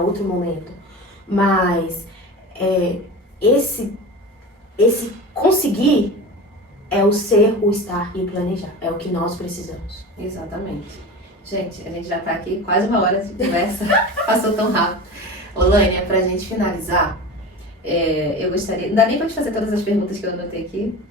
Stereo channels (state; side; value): normal; both; correlation 0.31